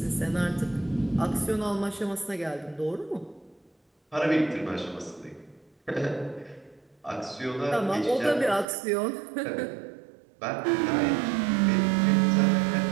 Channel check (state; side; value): drops out; left; at 8.7 s